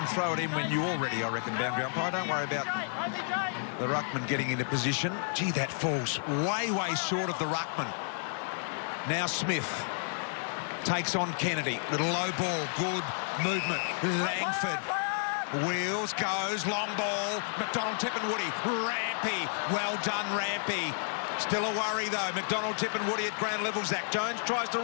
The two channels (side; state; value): right; silent; 57 dB below the other